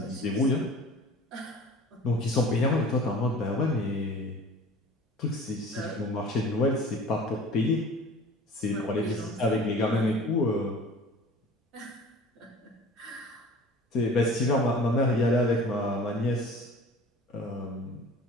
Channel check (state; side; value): normal; both; correlation 0.43